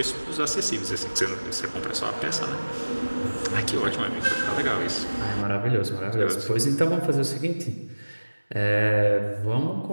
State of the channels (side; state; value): both; inverted; correlation -1.00